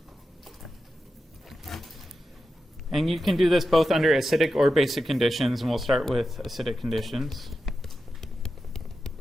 And you can do this both under acidic or basic conditions, and we'll start with acidic conditions.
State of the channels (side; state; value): both; normal; correlation 0.90